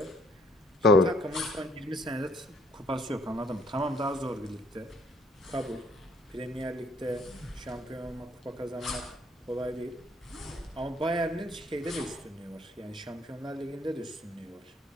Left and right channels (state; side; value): normal; both; correlation 0.64